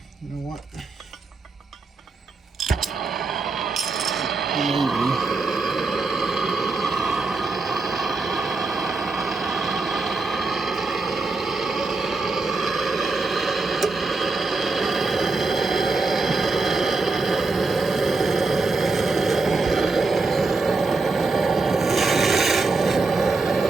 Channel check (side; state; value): left; quieter; 3.7 dB